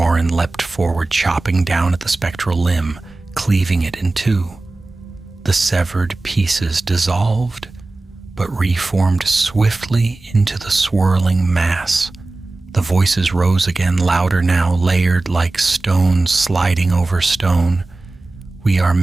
leapt forward, chopping down at the spectral limb, cleaving it in two. The severed pieces dissolved, but reformed swiftly into the swirling mass. The voices rose again, louder now, layered like stone sliding over stone. We are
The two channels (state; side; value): quieter; left; 3.1 dB